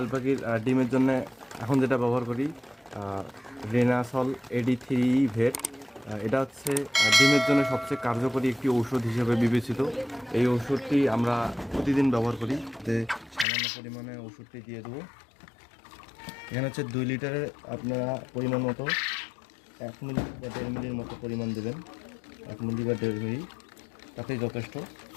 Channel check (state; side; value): drops out; right; at 13.5 s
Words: পাখির ডিমের জন্য এখন যেটা ব্যবহার করি রেনাসল এডি 3 ভেট। এটা ডিমের জন্য সবচেয়ে কার্যকরী একটি ঔষধ হিসেবে বিবেচিত। এই ওষুধটি আমরা প্রতিদিন ব্যবহার করি। সামান্য পরিমাণে ওষুধটি দিয়ে দেবো। এখানে 2 লিটারের আপনারা পরিমাণ মতো 1 মিলি বা 1.5 মিলির মতো পরিমাণ দেবেন। 1 মিলি বা 1.5 মিলি তাতেই যথেষ্ট।